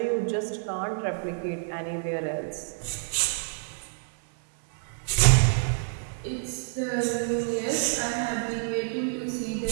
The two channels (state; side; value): silent; left; 59 dB below the other